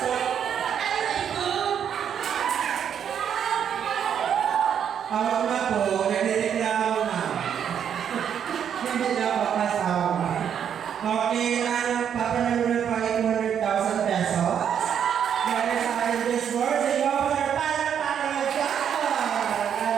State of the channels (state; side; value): quieter; left; 8.5 dB